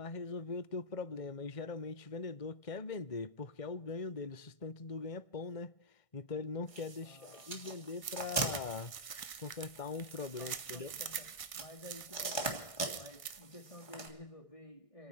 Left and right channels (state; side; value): late; right; 1.6 ms